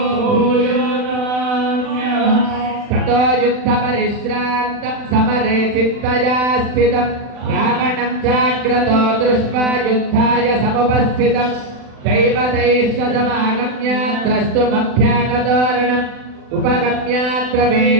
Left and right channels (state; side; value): late; left; 40 ms